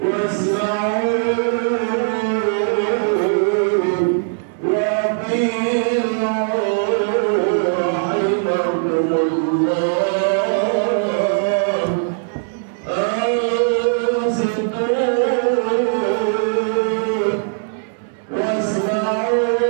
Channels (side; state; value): left; silent; digital silence